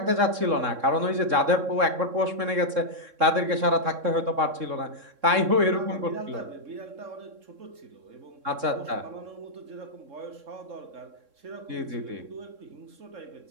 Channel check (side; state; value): left; late; 3.7 ms